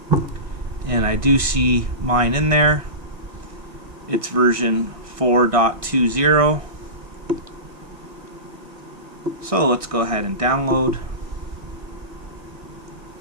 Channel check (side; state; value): left; late; 1.6 ms